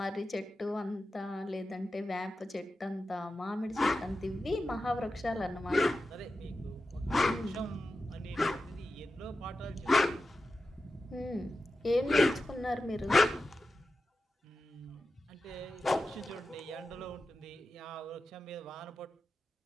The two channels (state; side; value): normal; both; correlation 0.92